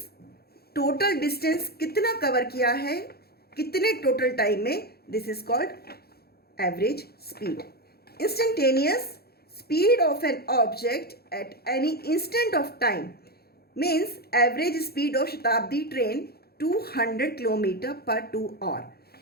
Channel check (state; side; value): late; right; 0.46 ms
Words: total distance कितना cover किया है, कितने total time में, this is called average speed. Instantaneous speed of an object at any instant of time means average speed of Shatabdi train 200 km per 2 hour.